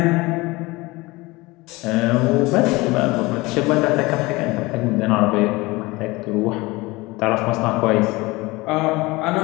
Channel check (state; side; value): quieter; right; 22.2 dB